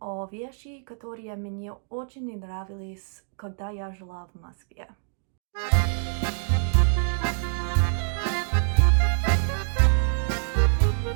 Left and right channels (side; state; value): left; silent; digital silence